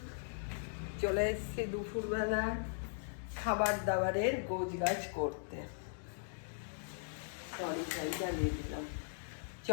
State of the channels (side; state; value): right; silent; digital silence